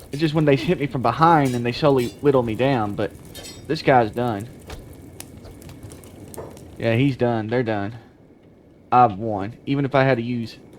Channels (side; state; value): both; identical; correlation 1.00